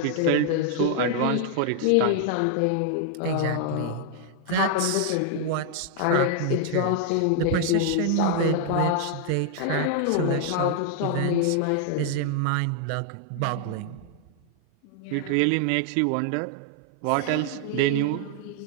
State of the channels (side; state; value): both; different; correlation 0.00